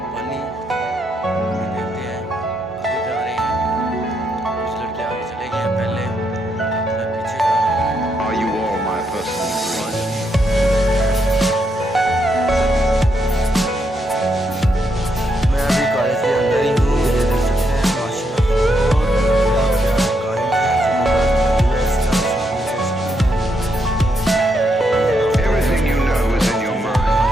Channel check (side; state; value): both; normal; correlation 0.79